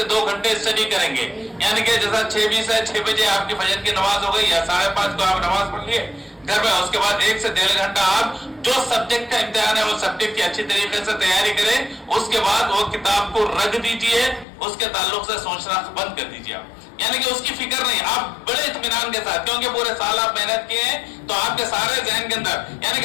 2 घंटे स्टडी करेंगे। यानी कि जैसा 6:20 है, 6 बजे आपकी फजर की नमाज हो गई या 5:30 को आप नमाज पढ़ लिए, घर में। उसके बाद 1 से 1.5 घंटा आप जो सब्जेक्ट का इम्तिहान है वो सब्जेक्ट की अच्छी तरीके से तैयारी करें। उसके बाद वो किताब को रख दीजिए, उसके ताल्लुक से सोचना बंद कर दीजिए आप, यानी कि उसकी फिक्र नहीं, आप बड़े इत्मीनान के साथ, क्योंकि पूरे साल आप मेहनत किए हैं तो आपके सारे जहन के अंदर, यानी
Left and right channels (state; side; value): drops out; right; at 14.5 s